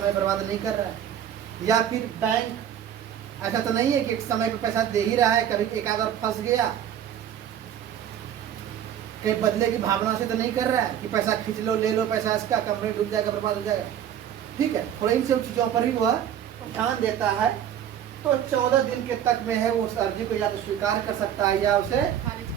बर्बाद नहीं कर रहा है। या फिर बैंक ऐसा तो नहीं है कि एक समय पे पैसा दे ही रहा है, कभी एक आध और फंस गया, कहीं बदले की भावना से तो नहीं कर रहा है कि पैसा खींच लो, ले लो पैसा इसका, कंपनी डूब जाएगा, बर्बाद हो जाएगा, ठीक है। थोड़ा इन सब चीजों पर भी वह ध्यान देता है। तो 14 दिन के तक में है वो उस अर्जी को या तो स्वीकार कर सकता है या उसे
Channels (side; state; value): left; quieter; 9.9 dB